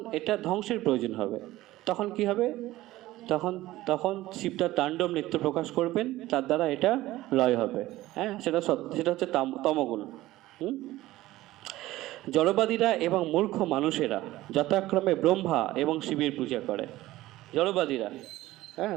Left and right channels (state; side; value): quieter; left; 16.6 dB